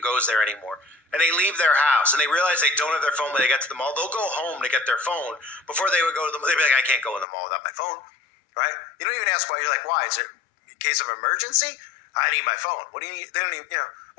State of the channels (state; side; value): drops out; right; at 7.2 s